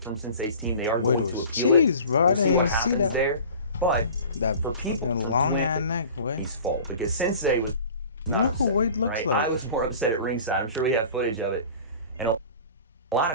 Sensei's team, they are going to appeal cheese, bro. I didn't even see that. There. But that for people long ass neck, way. His fault, because Sensei was. You know who Wade looks like? I was more upset at ringside. I'm sure we have footage of it, and a lot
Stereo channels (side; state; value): both; inverted; correlation -0.42